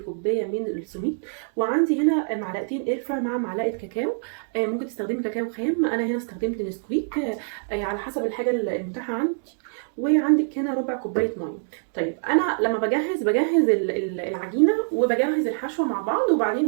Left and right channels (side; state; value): left; silent; digital silence